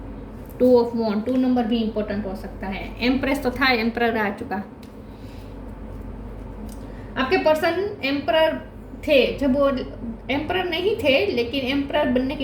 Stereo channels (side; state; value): both; identical; correlation 1.00